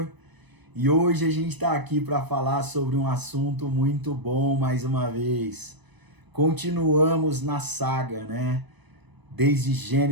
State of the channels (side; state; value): left; late; 1.0 ms